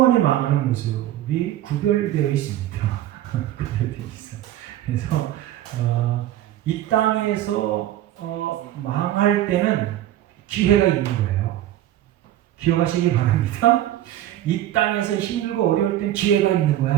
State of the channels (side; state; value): left; quieter; 13.0 dB